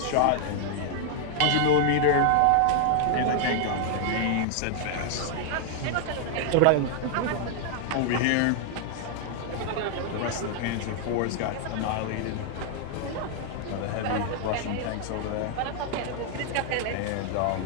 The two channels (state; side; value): different; both; correlation 0.00